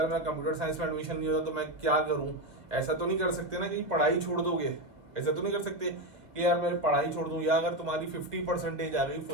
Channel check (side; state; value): left; late; 1.8 ms